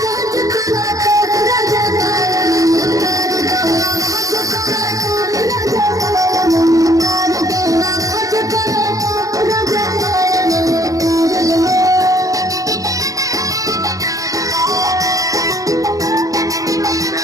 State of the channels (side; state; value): left; late; 0.17 ms